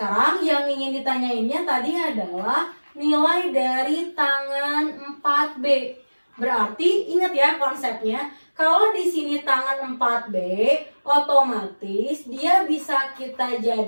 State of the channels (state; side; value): inverted; both; correlation -1.00